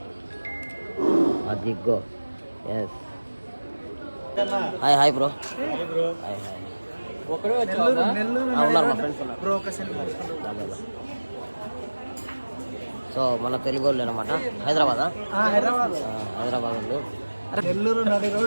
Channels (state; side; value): inverted; both; correlation -1.00